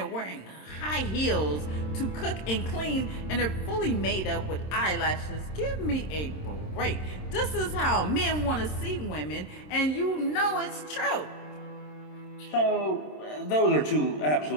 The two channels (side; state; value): right; late; 26 ms